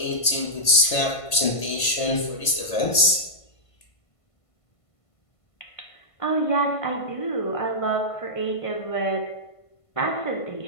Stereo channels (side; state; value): right; late; 1.5 ms